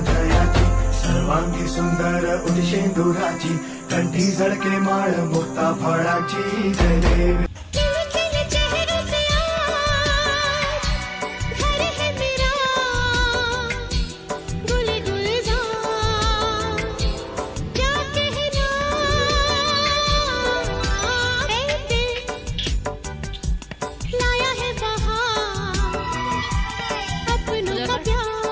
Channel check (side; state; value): both; identical; correlation 1.00